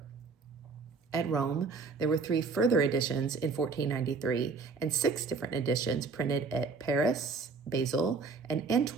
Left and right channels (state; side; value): quieter; left; 4.5 dB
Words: At Rome, there were 3 further editions in 1493 and 6 different editions printed at Paris, Basel, and